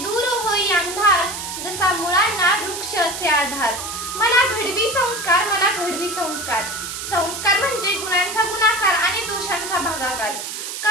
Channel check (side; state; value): right; noise; hiss, 7 dB below the sound